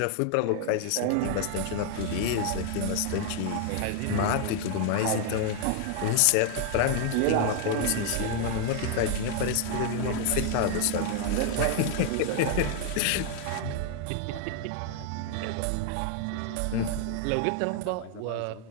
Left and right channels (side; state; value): both; different; correlation 0.00